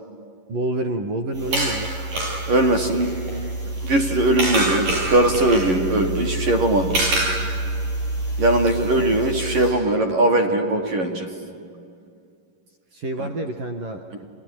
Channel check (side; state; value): left; late; 11 ms